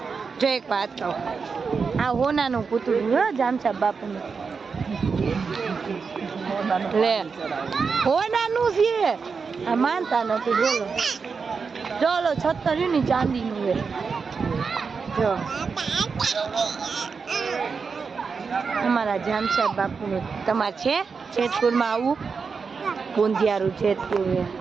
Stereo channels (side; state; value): left; quieter; 5.3 dB